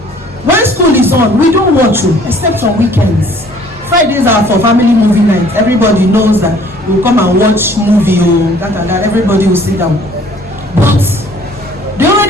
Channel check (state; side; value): normal; both; correlation 0.55